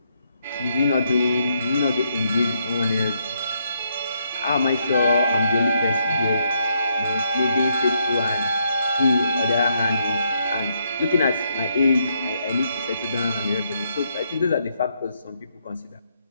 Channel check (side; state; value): both; inverted; correlation -0.76